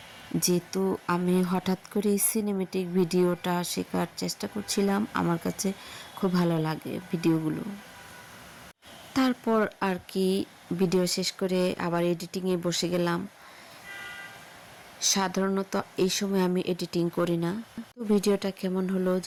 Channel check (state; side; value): identical; both; correlation 1.00